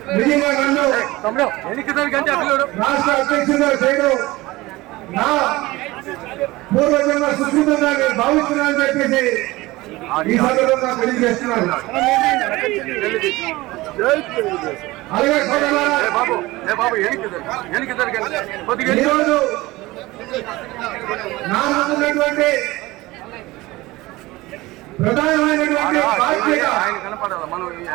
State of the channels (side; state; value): left; quieter; 19.8 dB